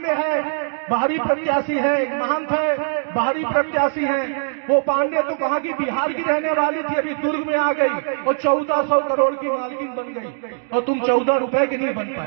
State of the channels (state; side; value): silent; left; digital silence